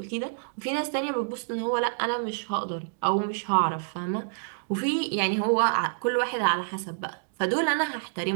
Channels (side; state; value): left; silent; digital silence